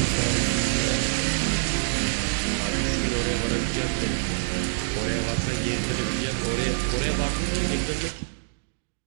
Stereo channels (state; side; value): silent; left; digital silence